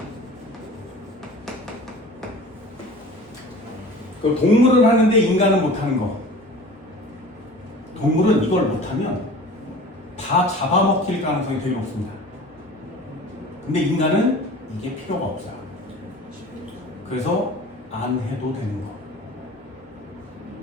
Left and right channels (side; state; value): both; normal; correlation 0.41